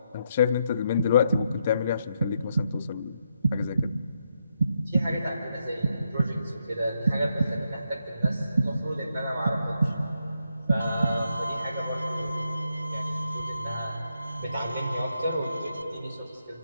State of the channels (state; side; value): inverted; both; correlation -0.80